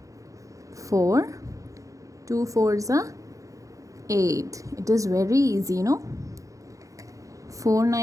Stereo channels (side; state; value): left; late; 0.16 ms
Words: 4, 2 4 ज़ा 8. It is very easy, no? 4